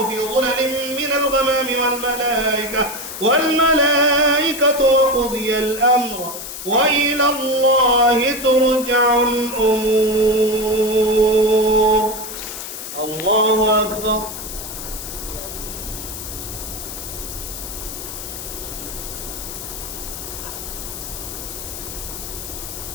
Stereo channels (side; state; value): left; noise; hiss, 9 dB below the sound